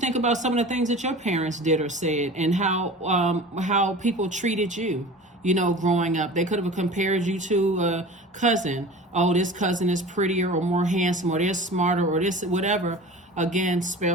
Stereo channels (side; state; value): both; normal; correlation 0.38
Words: about some of the things that your parents did or said, and how people treated you, you know, growing up. They could have compared you to a cousin. Oh, this cousin is prettier or more handsome, or they're smarter, or this, whatever. Again,